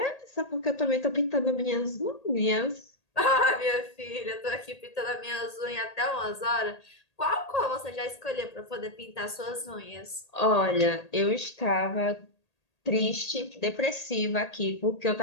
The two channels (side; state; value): right; late; 1.8 ms